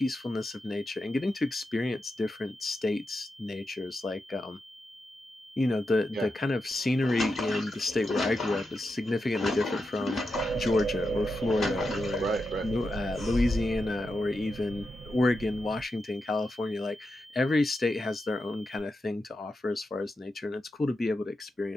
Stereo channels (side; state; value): both; normal; correlation 0.88